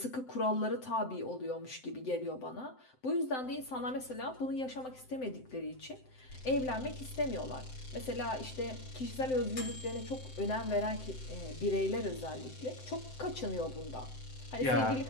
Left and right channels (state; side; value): late; right; 7.8 ms